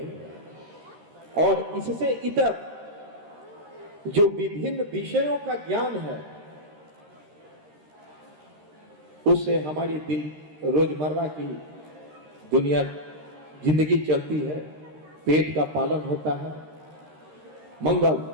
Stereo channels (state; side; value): late; left; 13 ms